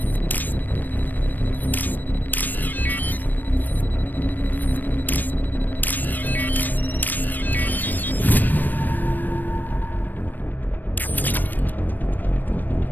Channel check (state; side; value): late; right; 0.089 ms